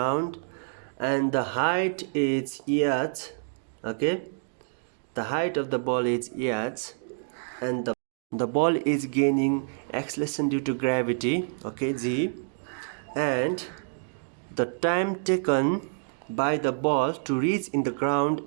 and the height is h. Okay, the height of the ball is h, and the ball is gaining acceleration due to gravity, okay, g, and the time taken by the ball to reach in the ground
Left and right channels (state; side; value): silent; left; digital silence